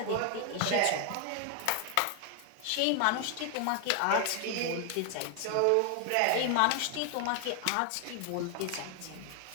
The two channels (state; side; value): different; both; correlation 0.00